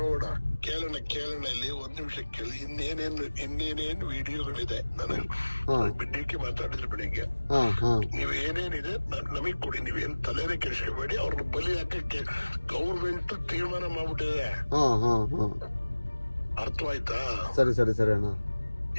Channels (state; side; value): inverted; both; correlation -1.00